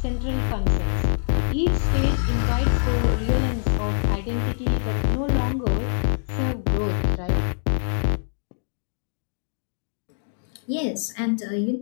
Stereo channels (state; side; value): silent; right; digital silence